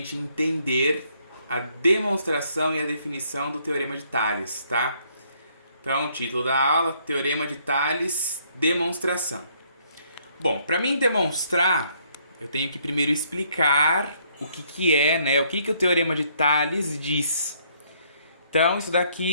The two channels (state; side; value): inverted; both; correlation -0.68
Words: entender a demonstração e a definição do Teorema de Tales, tá? Então, título da aula, Teorema de Tales, demonstração. Bom, para mim demonstrar, eu tenho que primeiro explicar o que é, né? O que o Teorema de Tales diz. Então, isso